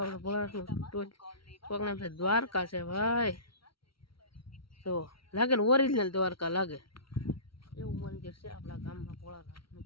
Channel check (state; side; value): late; right; 0.74 ms